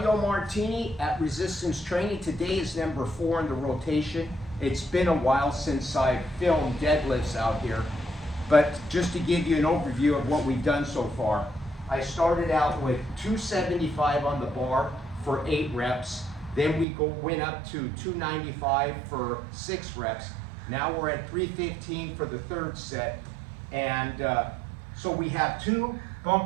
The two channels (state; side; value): drops out; left; at 16.9 s